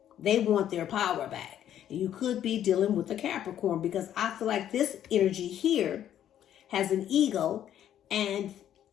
They want their power back. And you could be dealing with a Capricorn because I feel like this energy here has an ego and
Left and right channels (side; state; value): right; quieter; 10.8 dB